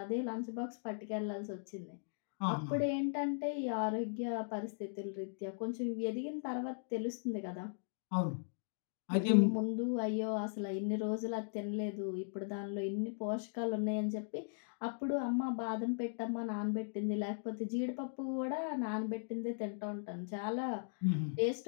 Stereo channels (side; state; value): right; silent; digital silence